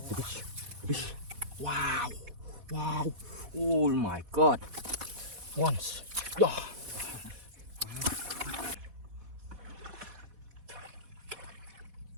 Wow. Wow. Oh my God. Once. Yeah.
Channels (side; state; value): left; late; 4.1 ms